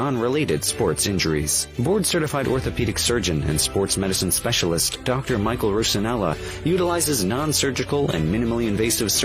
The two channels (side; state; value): both; identical; correlation 1.00